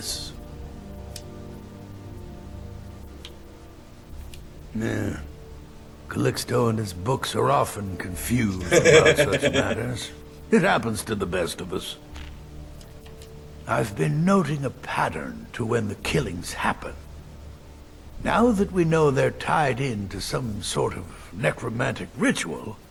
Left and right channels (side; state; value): both; identical; correlation 1.00